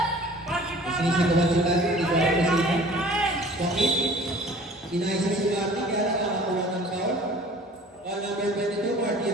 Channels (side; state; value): both; normal; correlation 0.48